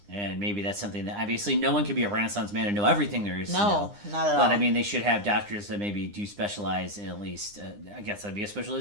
And maybe that's something that obviously no one can be a Renaissance man and know everything there is to know. Not at all. But I mean, they should have doctors that maybe do specialize in at least, I guess that'd be a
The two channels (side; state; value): left; late; 9.8 ms